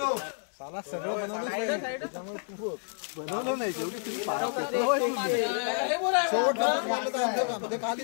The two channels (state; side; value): silent; right; digital silence